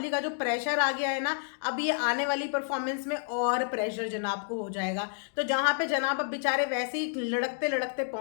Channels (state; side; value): silent; right; digital silence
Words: का जो प्रेशर आ गया है ना, अब ये आने वाली परफॉर्मेंस में और प्रेशर जनाब को हो जाएगा। तो जहां पे जनाब अब बेचारे वैसे ही लड़कते लड़कते